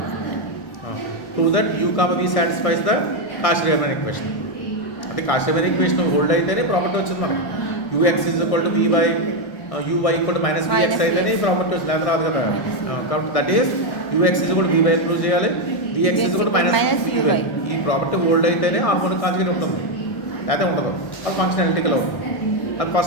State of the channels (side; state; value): right; late; 1.6 ms